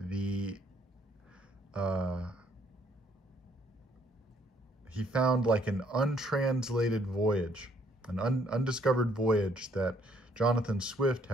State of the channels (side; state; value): both; normal; correlation 0.66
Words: like an untranslated voyage, an undiscovered voyage that Jonathan Swift